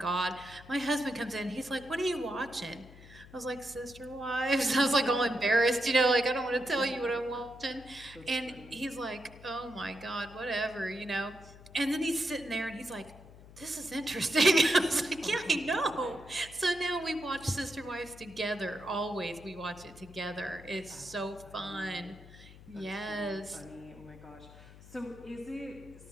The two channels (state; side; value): noise; left; hum, 19 dB below the sound